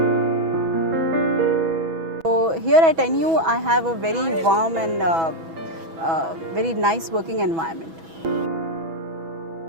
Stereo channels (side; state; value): left; late; 6.1 ms